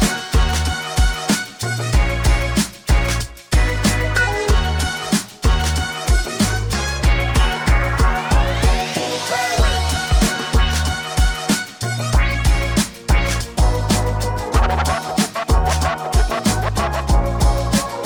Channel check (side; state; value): both; identical; correlation 1.00